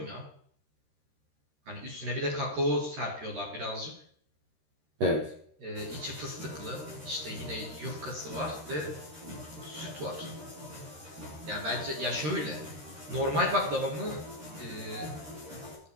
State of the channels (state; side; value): late; left; 13 ms